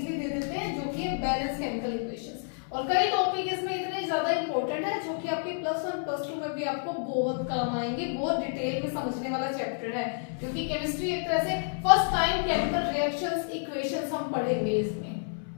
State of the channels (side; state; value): right; silent; 58 dB below the other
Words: दे देते हैं, जो कि है बैलेंस केमिकल इक्वेशंस। और कई टॉपिक इसमें इतने ज्यादा इंपॉर्टेंट है जो कि आपके +1 +2 में भी आपको बहुत काम आएंगे, बहुत डिटेल में समझने वाला चैप्टर है, क्योंकि केमिस्ट्री एक तरह से first time chemical reactions equations हम पढ़ेंगे इसमें।